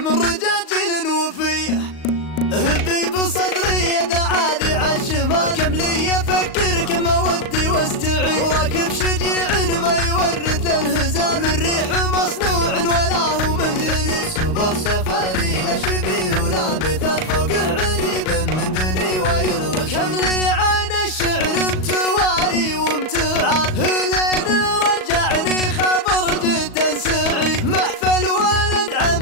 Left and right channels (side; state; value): right; late; 38 ms